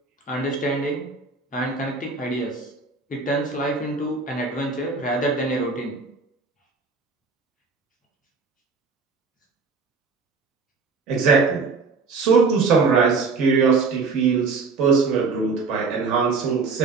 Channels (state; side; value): quieter; left; 4.5 dB